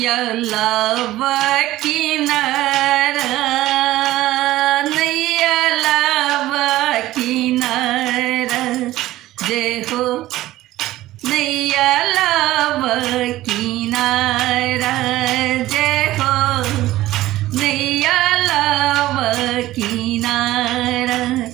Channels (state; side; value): quieter; left; 15.9 dB